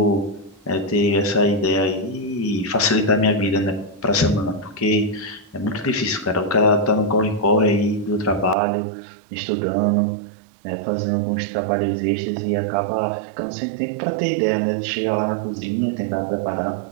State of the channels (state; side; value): drops out; left; at 8.6 s